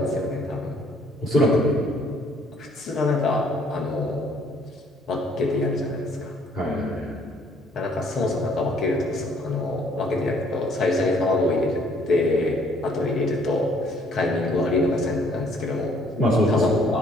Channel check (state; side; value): normal; both; correlation 0.62